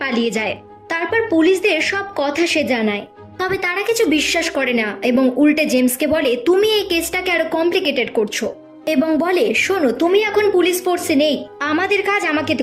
পালিয়ে যায়। তারপর পুলিশদের সব কথা সে জানায়, তবে তারা কিছু বিশ্বাস করে না এবং উল্টে জেমসকে বলে তুমি এই কেসটাকে আরো কমপ্লিকেটেড করছো এবং বলে শোনো তুমি এখন পুলিশ ফোর্সে নেই, আমাদের কাজ আমাকে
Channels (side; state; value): both; identical; correlation 1.00